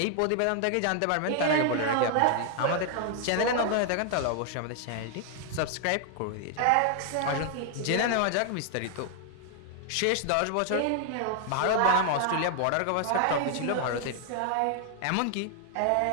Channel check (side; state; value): both; different; correlation 0.00